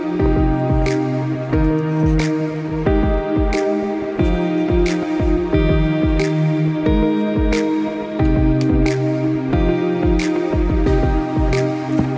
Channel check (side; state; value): both; identical; correlation 1.00